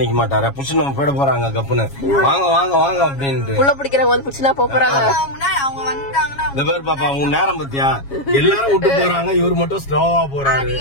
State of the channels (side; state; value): right; late; 7.3 ms